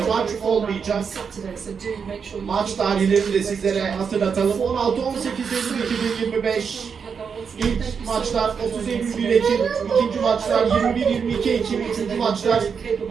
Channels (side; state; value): left; quieter; 6.3 dB